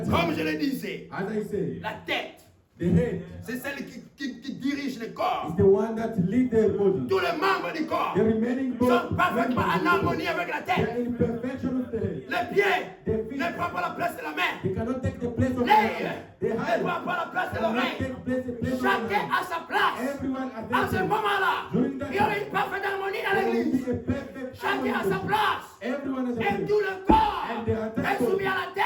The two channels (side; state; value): both; identical; correlation 1.00